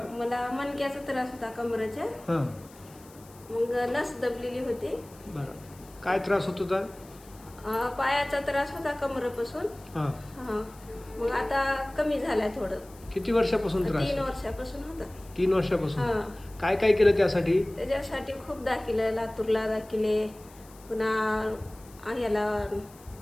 मला मणक्याचा त्रास होता कमरेच्या. हां. मग नस दबलेली होती. बरं. काय त्रास होत होता? पायाचा त्रास होता कमरेपासून. हां. हा मग आता कमी झालाय थोडं. किती वर्षापासून त्रास? 3 वर्षापासून होता. 3 वर्षापासून. हा. काय काय केलं त्यासाठी? त्याच्यासाठी खूप दाखिले, लातूरला दाखिले, पुन्हा ह्याला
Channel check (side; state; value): left; noise; hiss, 24 dB below the sound